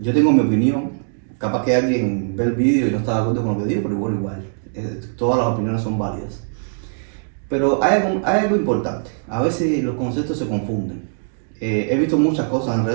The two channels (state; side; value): silent; left; digital silence